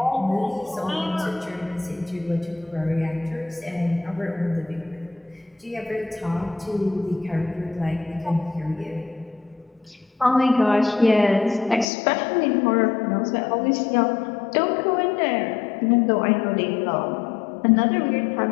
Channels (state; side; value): drops out; right; at 11.9 s